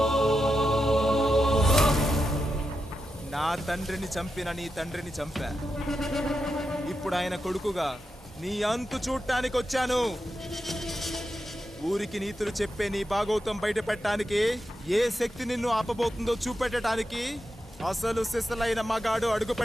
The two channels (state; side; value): normal; both; correlation 0.88